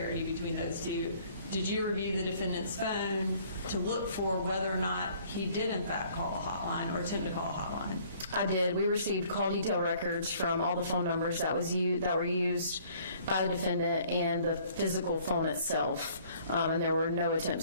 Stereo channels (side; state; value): both; inverted; correlation -0.58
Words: between those two. Did you review the defendant's phone to look for whether or not he did in fact call a hotline or attempt to call a hotline? I did. We received call detail records from all the phone numbers that were used by the defendant and the physical phone itself, and there were no